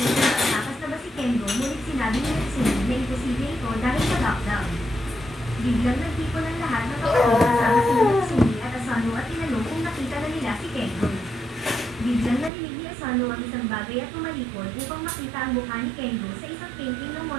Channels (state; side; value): drops out; left; at 12.5 s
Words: kung nakatakas na ba si Kengo ngunit sinabi ni Natsumi na imposible ito dahil sa lockdown. Biglang nagtipon ng lahat ng kapatid kasama si Natsumi at Asano at tinanong kung nakita na nila si Kengo. Biglang narinig ni Asano ang isang bagay at tumalikod upang makita ang mukha ni Kengo sa isang painting ng